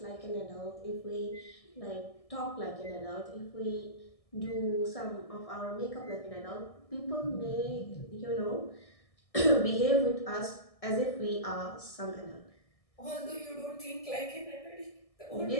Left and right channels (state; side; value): late; right; 1.6 ms